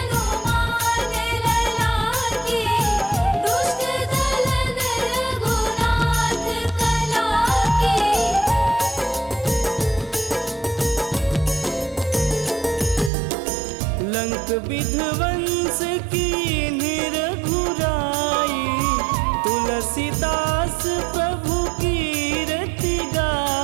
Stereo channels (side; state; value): left; drops out; at 13.1 s